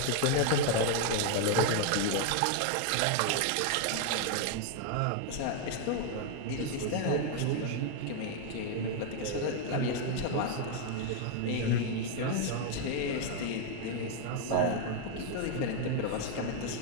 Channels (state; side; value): different; both; correlation 0.00